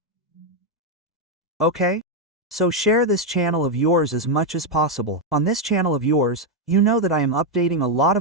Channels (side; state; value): both; normal; correlation 0.02